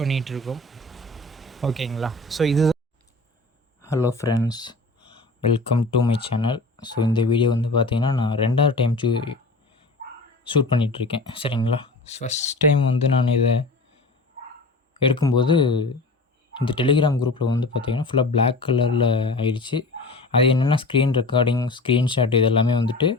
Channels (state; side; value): quieter; right; 3.2 dB